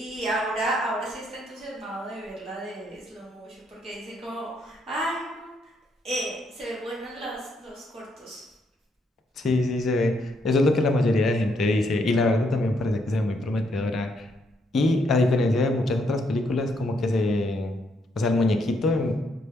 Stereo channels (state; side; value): normal; both; correlation 0.74